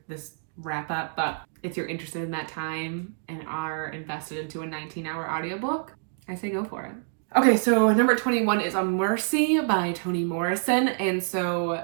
wrap up, but if you're interested in that time and are invested into a 19-hour audiobook, I say go for it. Okay, so number 21 is A Mercy by Toni Morrison. And so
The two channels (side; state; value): left; silent; digital silence